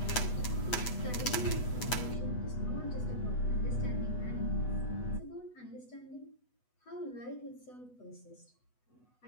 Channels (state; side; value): late; right; 8.1 ms